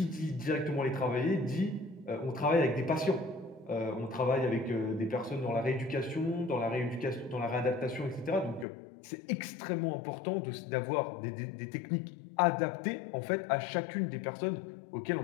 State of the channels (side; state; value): right; drops out; at 8.7 s